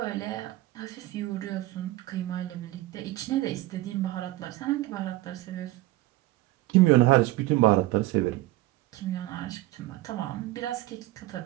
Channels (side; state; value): left; quieter; 17.7 dB